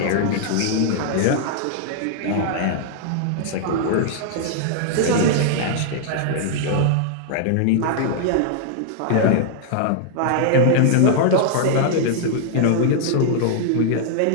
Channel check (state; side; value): different; both; correlation -0.01